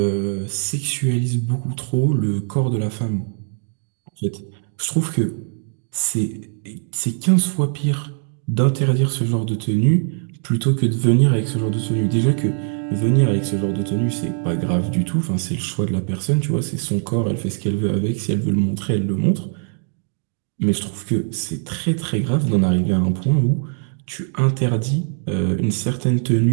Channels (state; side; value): silent; left; 56 dB below the other